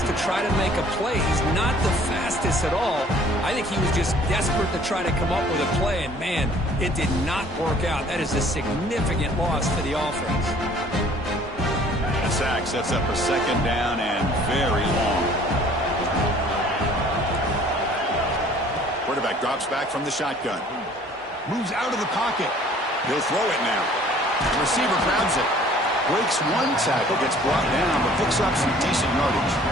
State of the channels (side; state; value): both; normal; correlation 0.54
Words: to try to make a play. He's not the fastest at all. I think he was just desperate to try to come up with a play, and man, it did not work out. That is a significant loss for the offense. Sack sets up a second down and very long. Quarterback drops back from the shotgun. Moves out of the pocket. He'll throw it now. The receiver grabs it. Breaks one tackle, gets brought down, but picks up some decent yardage.